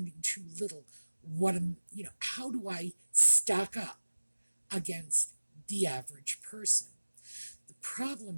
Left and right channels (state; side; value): inverted; both; correlation -1.00